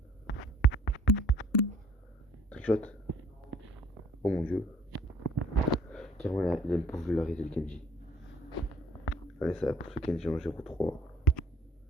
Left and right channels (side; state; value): both; normal; correlation 0.56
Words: Trickshot. Oh mon dieu. Carrément, il a une popularité le Kenji. Allez, ça va pour ce Kenji en 0-3.